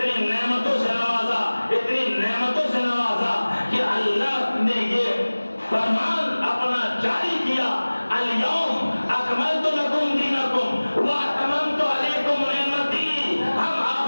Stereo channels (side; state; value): both; inverted; correlation -1.00